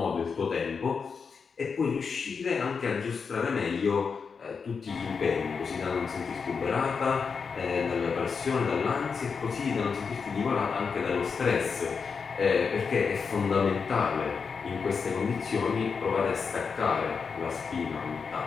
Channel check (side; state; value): right; quieter; 5.6 dB